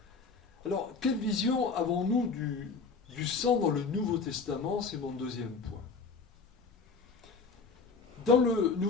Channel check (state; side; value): quieter; right; 4.7 dB